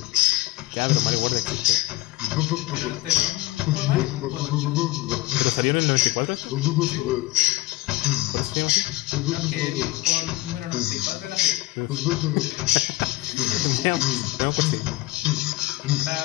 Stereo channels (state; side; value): quieter; right; 19.1 dB